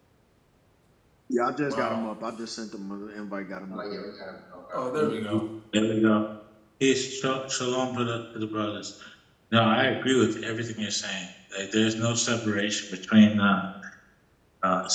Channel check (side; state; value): both; identical; correlation 1.00